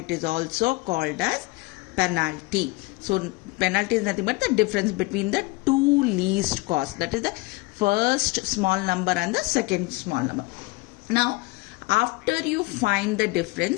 is also called as penalty. So penalty is nothing but the difference between the two least costs, that is the first small number and the second small number. Now after you find the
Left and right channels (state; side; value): quieter; right; 23.1 dB